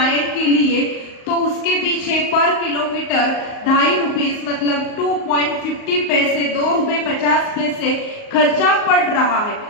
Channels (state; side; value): late; right; 38 ms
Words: के लिए, तो उसके पीछे पर किलोमीटर 2.5 रुपीज मतलब 2.50 पैसे, 2 रुपए 50 पैसे खर्चा पड़ रहा है।